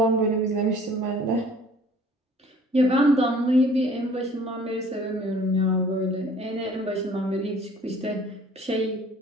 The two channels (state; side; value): normal; both; correlation 0.52